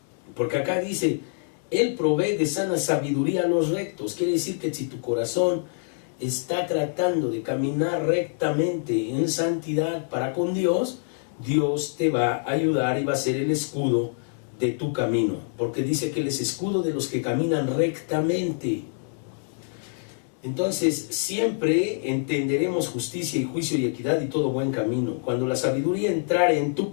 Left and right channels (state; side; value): silent; right; 61 dB below the other